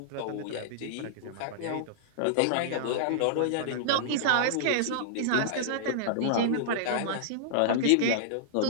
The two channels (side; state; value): both; different; correlation -0.01